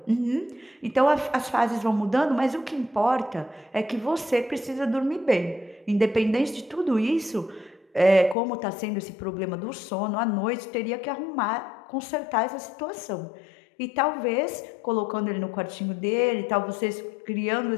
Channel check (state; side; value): drops out; right; at 8.3 s